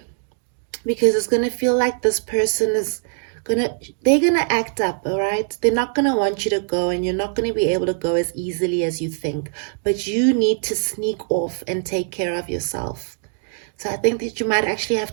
Because it's going to feel like this person is they're going to act up, all right? They're not going to want you to go, and you're not going to be able to go as easily as you think. But you need to sneak off and take care of yourself. So I think that you might actually have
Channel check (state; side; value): silent; left; 57 dB below the other